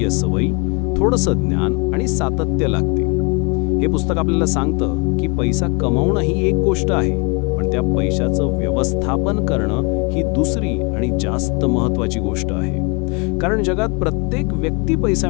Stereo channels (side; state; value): right; quieter; 31.2 dB